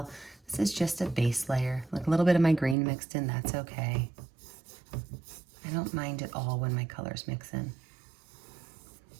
This is just a base layer. Like a little bit of my green mixed in, that's okay. I don't mind at all when my colors mix in.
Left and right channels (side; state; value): left; drops out; at 2.8 s